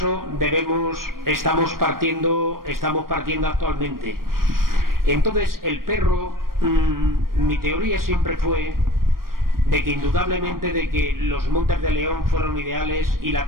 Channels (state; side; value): late; left; 0.92 ms